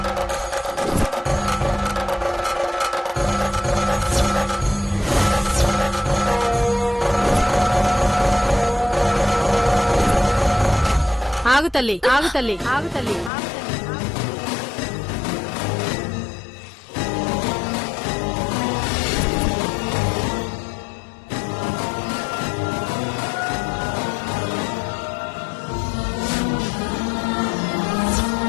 ఆగు తల్లి, ఆగు తల్లి, ఆగు తల్లి.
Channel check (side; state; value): right; drops out; at 13.3 s